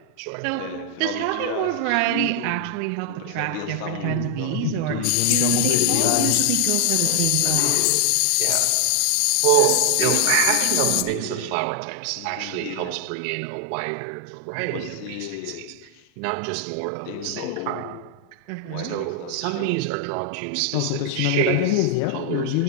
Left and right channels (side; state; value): both; different; correlation 0.00